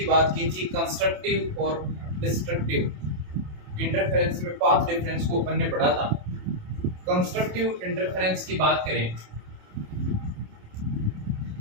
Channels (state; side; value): late; left; 27 ms